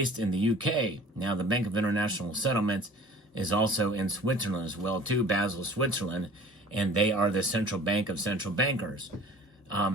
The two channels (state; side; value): normal; both; correlation 0.46